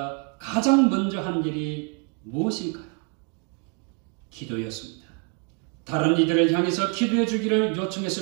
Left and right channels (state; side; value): quieter; left; 37.4 dB